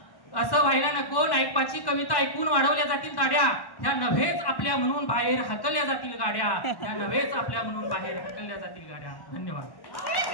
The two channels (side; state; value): right; late; 1.1 ms